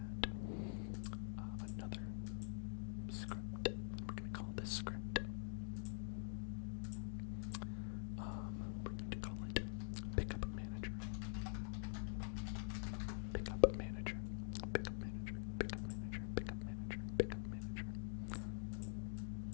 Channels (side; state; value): right; silent; digital silence